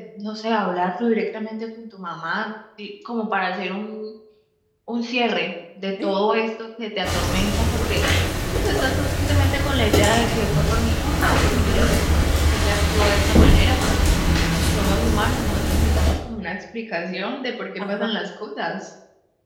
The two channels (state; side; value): identical; both; correlation 1.00